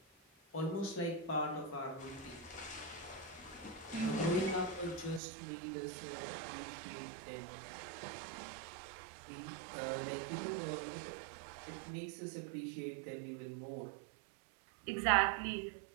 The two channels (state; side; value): drops out; left; at 5.2 s